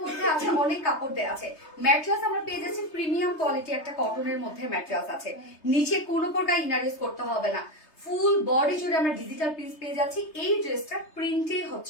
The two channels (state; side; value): late; right; 3.3 ms